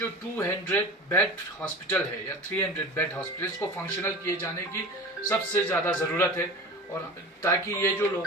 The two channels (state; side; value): normal; both; correlation 0.34